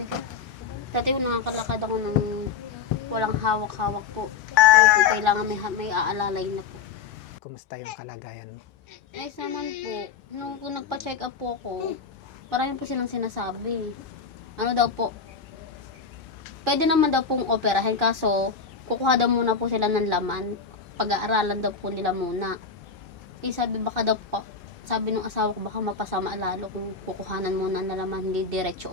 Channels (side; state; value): right; quieter; 5.7 dB